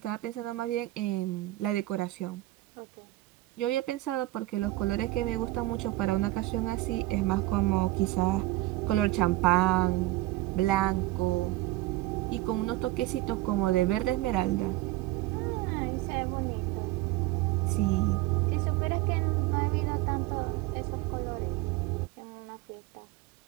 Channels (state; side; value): quieter; left; 18.0 dB